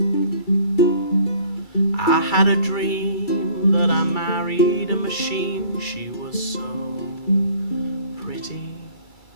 I had a dream that I married a machine. She was so pretty.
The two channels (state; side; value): late; right; 2.3 ms